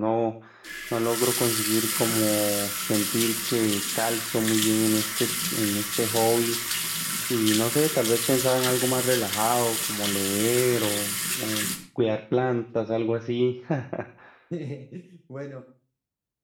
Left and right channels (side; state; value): both; identical; correlation 1.00